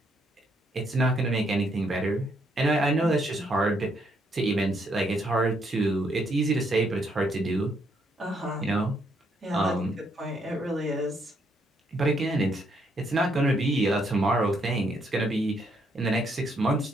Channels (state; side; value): normal; both; correlation 0.73